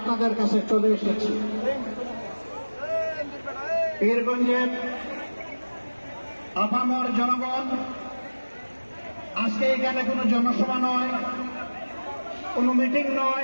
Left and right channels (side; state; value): both; inverted; correlation -1.00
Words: কাছে চলে এসেছি। পীরগঞ্জের আপামর জনগণ, আজকে এখানে কোনো জনসভা নয়, কোনো মিটিং